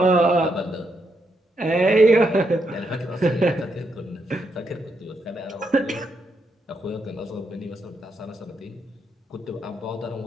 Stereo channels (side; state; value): both; normal; correlation 0.79